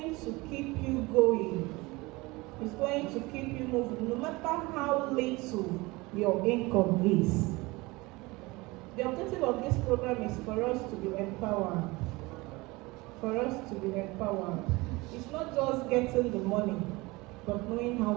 to keep you going. It's going to keep you moving, no matter how little your income is. The objective of this program is for us to be empowered. For us to be empowered. It's not just getting the money, but knowing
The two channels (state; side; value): quieter; left; 22.9 dB